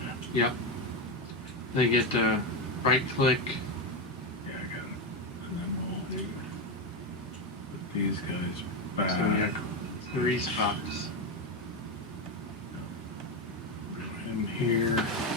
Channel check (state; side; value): normal; both; correlation 0.12